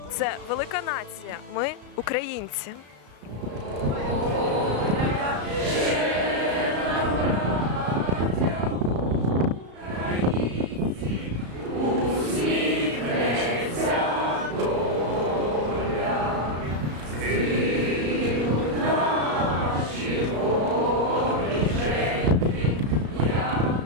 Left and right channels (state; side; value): late; left; 34 ms